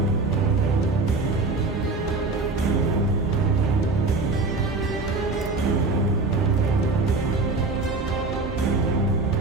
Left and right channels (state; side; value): quieter; left; 3.5 dB